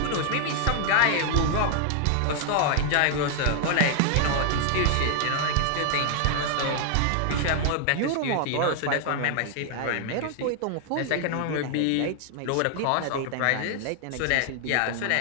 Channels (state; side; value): different; both; correlation 0.00